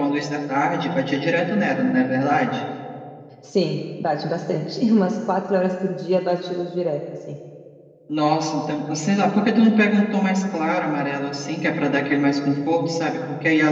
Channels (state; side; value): identical; both; correlation 1.00